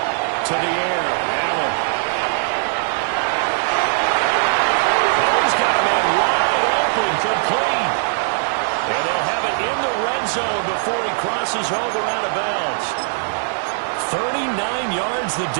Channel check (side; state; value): left; silent; digital silence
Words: To the air, Allen. Oh, he's got a man wide open, complete. And they'll have it in the red zone before he crosses over out of bounds. 39 yards the